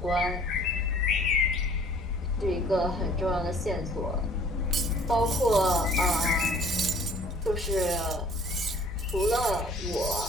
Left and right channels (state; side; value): normal; both; correlation 0.54